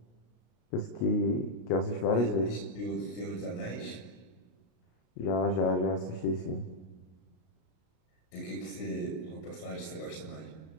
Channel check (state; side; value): late; right; 33 ms